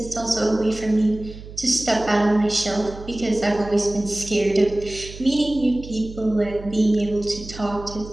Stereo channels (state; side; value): noise; right; hum, 14 dB below the sound